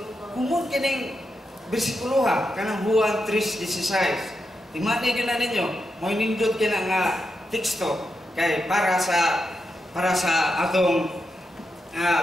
kumon kining bersikulo ha, kanang Juan 3:16. Timani din na ninyo, mo nindot kina nga teksto kay para sa atong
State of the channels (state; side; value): normal; both; correlation 0.86